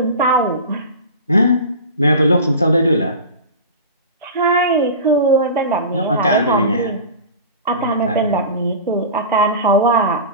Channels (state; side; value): inverted; both; correlation -0.32